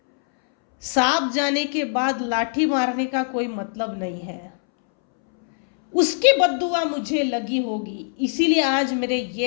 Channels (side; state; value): right; silent; 64 dB below the other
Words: सांप जाने के बाद लाठी मारने का कोई मतलब नहीं है। उसकी बद्दुआ मुझे लगी होगी, इसीलिए आज मेरे